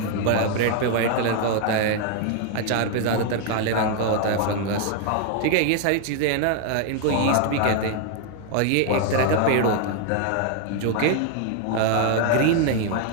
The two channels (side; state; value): both; different; correlation 0.00